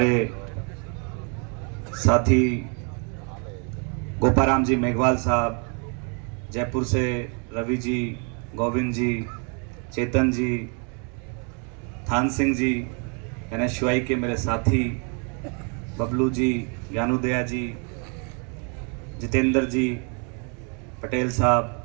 साथी गोपाराम जी मेघवाल साहब, जयपुर से रवि जी, गोविंद जी, चेतन जी, थान सिंह जी, NSUI के मेरे साथी बबलू जी, ज्ञानुदया जी, जितेंद्र जी, पटेल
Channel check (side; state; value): left; quieter; 37.0 dB